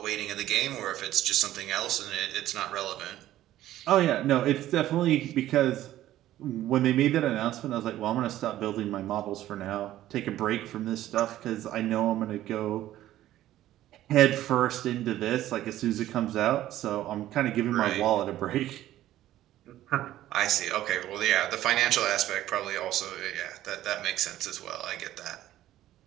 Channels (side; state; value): left; quieter; 13.7 dB